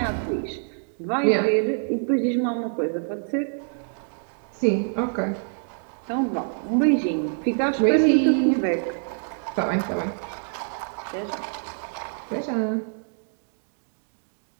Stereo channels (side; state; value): left; silent; digital silence